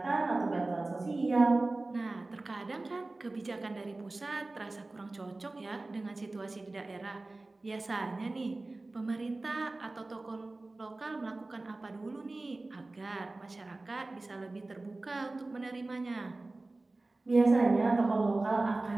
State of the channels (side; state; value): left; quieter; 3.1 dB